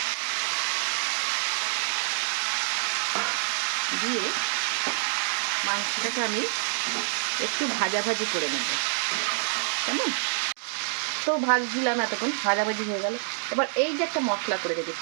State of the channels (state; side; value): silent; left; digital silence